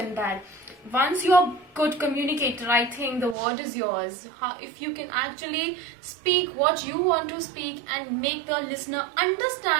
that. Once you're a good communicator, I think the word is yours. If you can actually speak what you want to speak and make the listener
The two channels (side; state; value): left; drops out; at 3.4 s